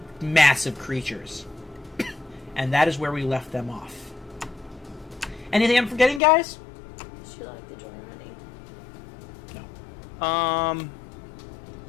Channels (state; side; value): drops out; right; at 6.2 s